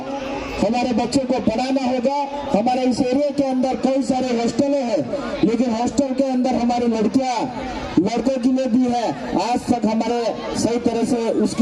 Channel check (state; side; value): identical; both; correlation 1.00